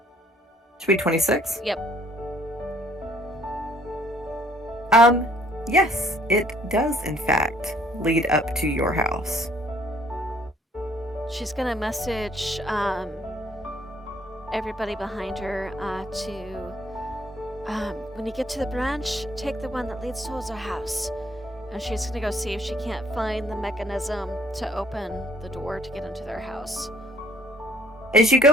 Should be 26? Yep. Yes, it does in fact lead up to your house. She's gonna message everybody behind her when you get to the branch, take the one that leads towards our house. And she's gonna go see if she can't find the mechanism to open the door to get into their house. As you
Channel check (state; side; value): normal; both; correlation 0.61